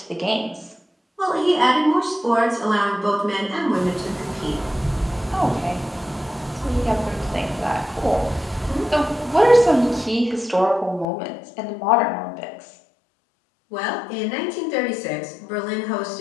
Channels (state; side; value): drops out; right; at 11.1 s